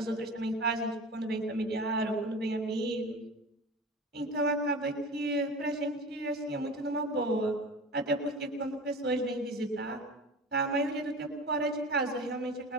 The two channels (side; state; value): both; normal; correlation 0.34